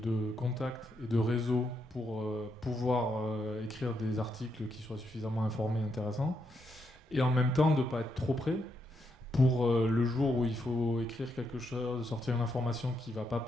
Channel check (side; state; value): both; normal; correlation 0.80